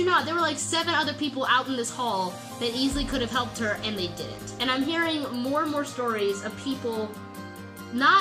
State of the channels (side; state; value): both; identical; correlation 1.00